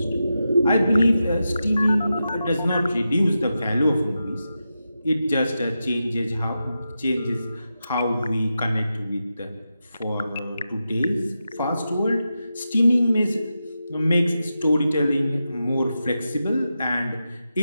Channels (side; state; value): both; inverted; correlation -0.89